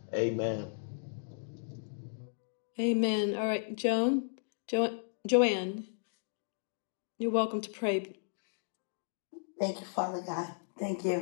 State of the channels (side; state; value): right; silent; digital silence